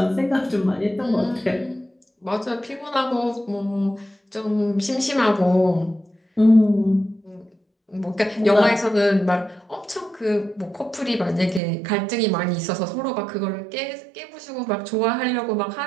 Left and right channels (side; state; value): left; drops out; at 11.6 s